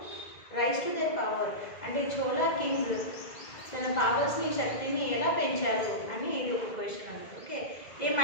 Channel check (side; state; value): right; late; 2.0 ms